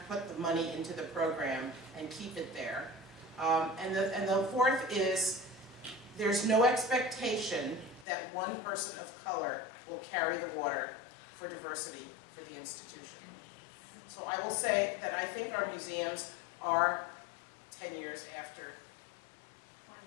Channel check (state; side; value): drops out; right; at 8.1 s